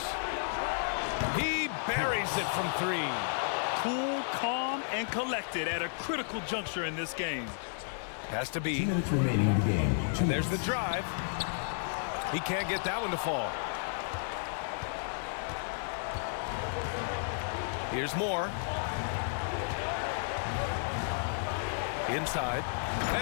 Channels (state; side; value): silent; right; digital silence